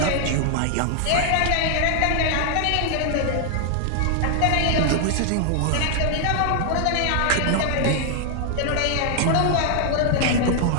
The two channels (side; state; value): both; different; correlation 0.00